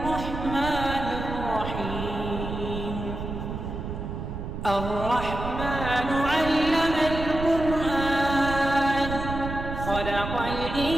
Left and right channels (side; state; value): right; noise; rumble, 6 dB below the sound